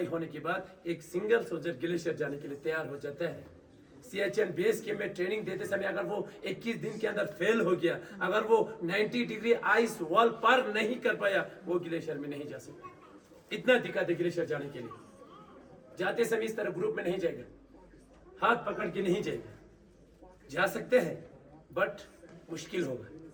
होने के बाद एक सिंगल सोल्जर ग्लेशियर जाने के लिए तैयार हो जाता है। सियाचिन बेस कैंप में ट्रेनिंग देते समय अगर वो 21 दिन के अंदर फेल हो गया, अगर वो 90 डिग्री आइस वॉल पार नहीं कर पाया, वो ग्लेशियर में नहीं जा सकता। इतना दिक्कत है ग्लेशियर जाने के लिए। जाते समय इस तरह ग्रुप में नहीं जाएगा, हाथ पकड़ के नहीं जाएगा, जा सकते हैं बट मुश्किल होगा।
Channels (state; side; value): identical; both; correlation 1.00